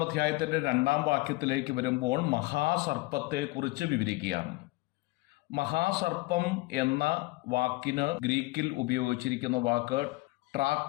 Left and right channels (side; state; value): right; quieter; 21.9 dB